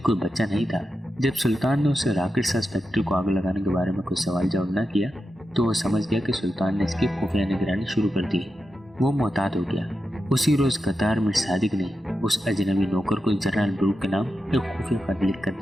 بچہ نہیں تھا۔ جب سلطان نے اسے راکٹ ساز فیکٹری کو آگ لگانے کے بارے میں کوئی سوال جواب نہ کیا تو وہ سمجھ گیا کہ سلطان نے اس کی خفیہ نگرانی شروع کر دی۔ وہ محتاط ہو گیا۔ اسی روز غدار میر صادق نے اس اجنبی نوکر کو جنرل بروک کے نام ایک خفیہ خط لکھ کر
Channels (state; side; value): normal; both; correlation 0.89